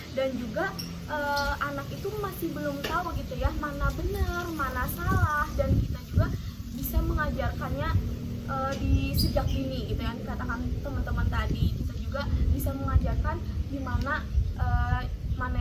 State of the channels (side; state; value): both; identical; correlation 1.00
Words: Dan juga anak itu masih belum tahu gitu ya mana benar, mana salah, dan kita juga bisa mengajarkannya di sejak dini gitu yang dikatakan teman-teman tadi. Kita juga bisa mengajarkan gimana mana